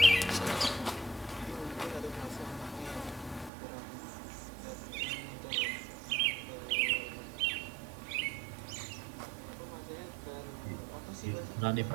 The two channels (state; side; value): drops out; left; at 3.5 s